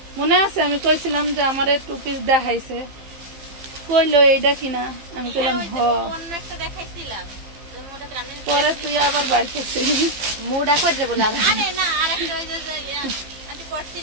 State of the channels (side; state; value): left; late; 15 ms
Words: মনে আছে? আমি কইছিলাম যে আমার 2 পিস দেখাইছে, কইলো এইটা কিনা, আমি কইলাম হ। পরে তুই আবার বাড়ি করছিলি, মুডা করে বলে